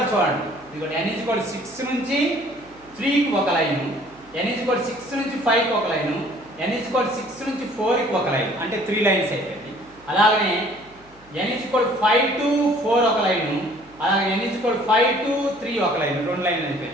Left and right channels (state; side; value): noise; right; hum, 28 dB below the sound